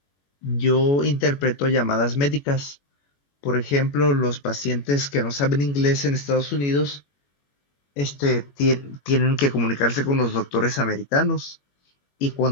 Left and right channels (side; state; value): right; late; 21 ms